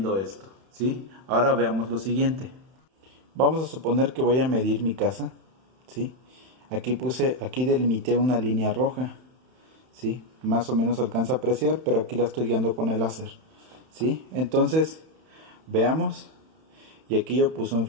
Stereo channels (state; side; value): late; left; 31 ms